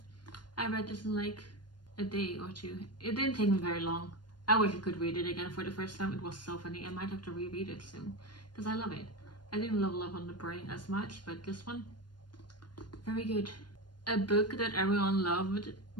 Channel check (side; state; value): right; late; 0.71 ms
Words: I read this in like a day or 2. It didn't take me very long. I wish I could read it again for the first time. It was so funny. I might have to reread it soon because I love it. I didn't love Love on the Brain as much, but this one, very good. A book that everyone loved,